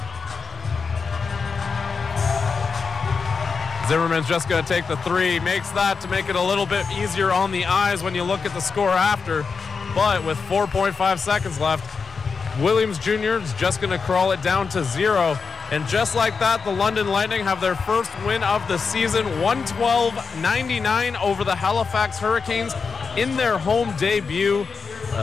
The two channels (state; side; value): quieter; right; 5.2 dB